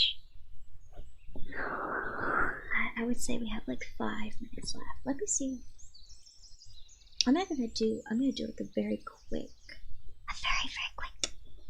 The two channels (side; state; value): both; identical; correlation 1.00